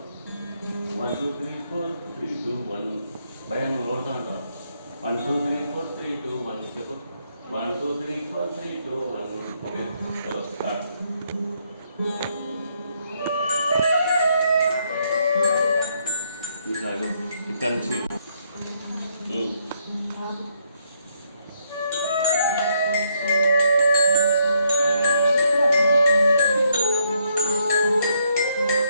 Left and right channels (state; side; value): inverted; both; correlation -0.74